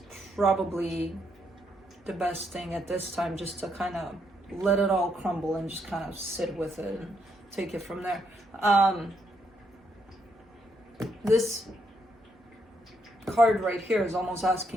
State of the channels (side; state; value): both; normal; correlation 0.76